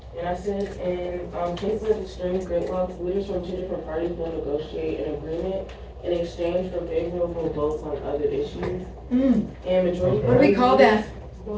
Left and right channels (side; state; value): both; identical; correlation 1.00